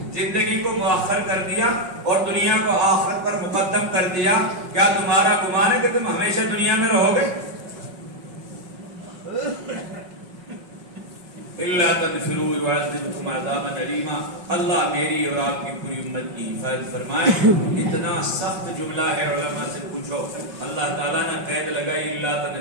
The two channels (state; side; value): late; left; 5.5 ms